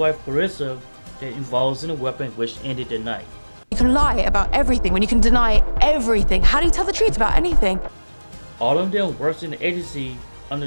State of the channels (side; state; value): both; inverted; correlation -1.00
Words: Carissa that involves in a weapon which ended the night. You can lie about everything when you can deny everything. How do you tell the truth about anything? All of them works in the agency